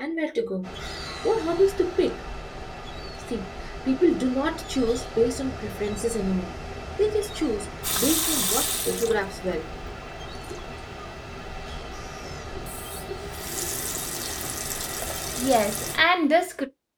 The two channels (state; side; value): identical; both; correlation 1.00